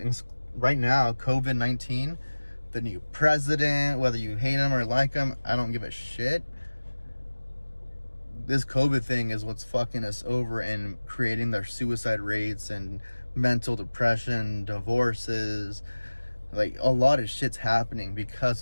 right now, COVID-19, the new president, whether you hate him or like him, I don't give a shit. This COVID thing is what's fucking us over and creating their suicide rates and mental depression, divorces. Like, a lot of shit's happening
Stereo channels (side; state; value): both; inverted; correlation -1.00